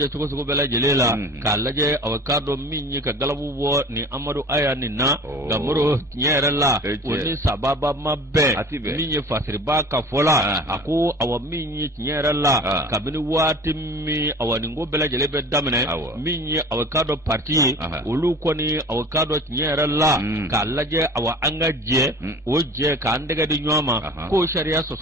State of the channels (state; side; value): normal; both; correlation 0.41